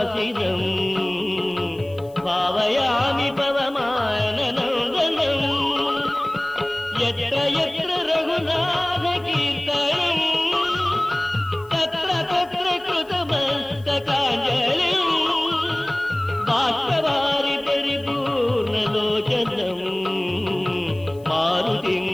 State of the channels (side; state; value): left; noise; hiss, 28 dB below the sound